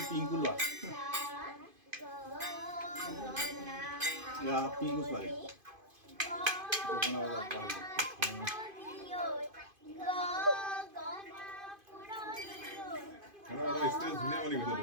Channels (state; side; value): late; left; 2.5 ms